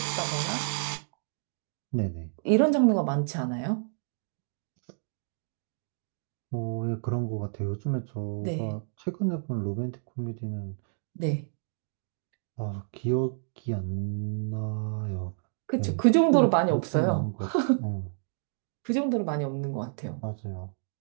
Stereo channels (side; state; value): left; silent; digital silence